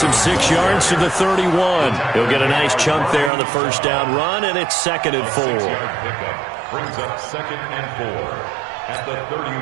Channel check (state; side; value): drops out; left; at 3.3 s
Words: him 6 yards to the 31. He'll get a nice chunk there on the first down run, and it's 2nd and 4. Brings up 2nd and 4 at the